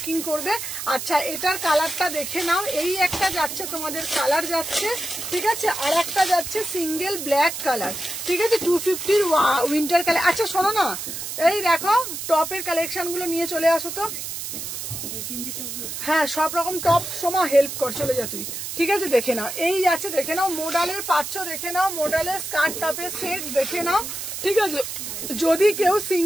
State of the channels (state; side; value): noise; right; hiss, 6 dB below the sound